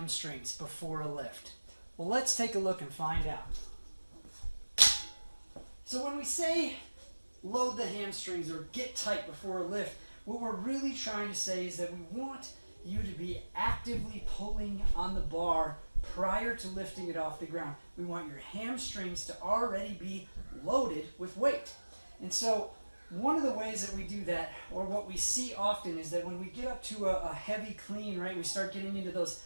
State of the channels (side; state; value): both; inverted; correlation -1.00